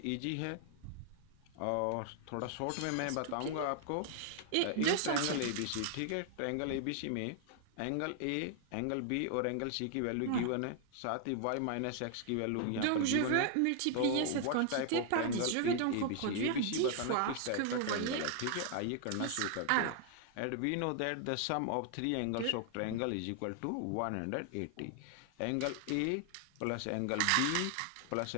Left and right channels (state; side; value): different; both; correlation 0.00